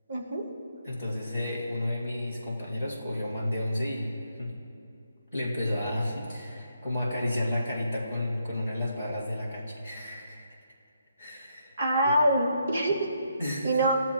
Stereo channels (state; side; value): inverted; both; correlation -0.77